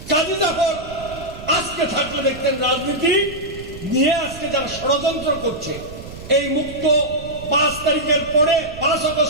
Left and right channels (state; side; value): noise; right; rumble, 14 dB below the sound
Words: কাজী জাফর আজকে থাকলে দেখতেন রাজনীতি নিয়ে আজকে যারা ষড়যন্ত্র করছে, এই মুক্ত 5 তারিখের পরে 5